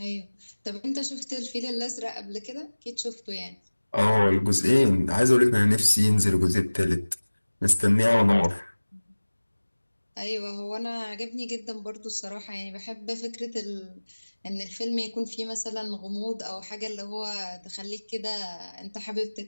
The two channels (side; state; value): both; inverted; correlation -1.00